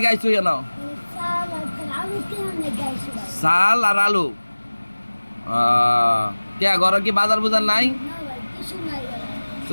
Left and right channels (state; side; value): inverted; both; correlation -1.00